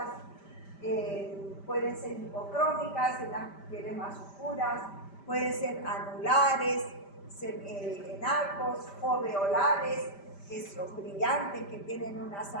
pueden ser hipocrómicas en las pieles más oscuras, pueden ser anulares, en arcos, foveolares, que son brillantes, que tienen unas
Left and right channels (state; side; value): late; right; 5.1 ms